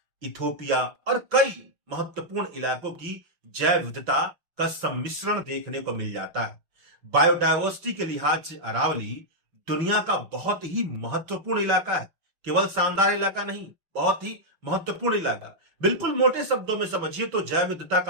इथोपिया और कई महत्वपूर्ण इलाकों की जैव विविधता का सम्मिश्रण देखने को मिल जाता है। बायोडायवर्सिटी के लिहाज से अरावली दुनिया का बहुत ही महत्वपूर्ण इलाका है। केवल शानदार इलाका नहीं, बहुत ही महत्वपूर्ण इलाका। बिल्कुल मोटे शब्दों में समझिए तो जैव विविधता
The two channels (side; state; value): left; late; 6.0 ms